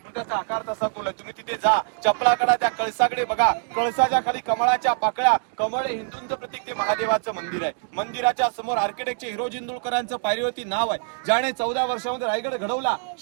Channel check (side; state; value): left; silent; digital silence